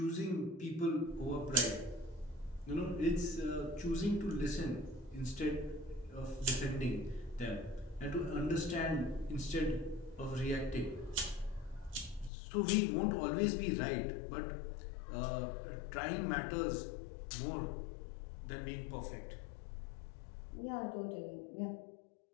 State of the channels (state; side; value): drops out; right; at 12.3 s